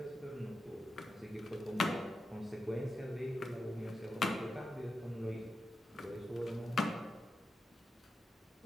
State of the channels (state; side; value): normal; both; correlation 0.89